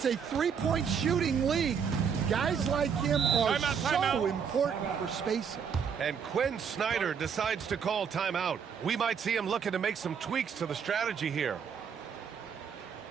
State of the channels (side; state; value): left; quieter; 6.9 dB